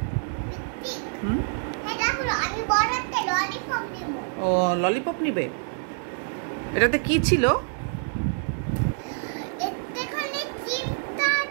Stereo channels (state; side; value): silent; left; digital silence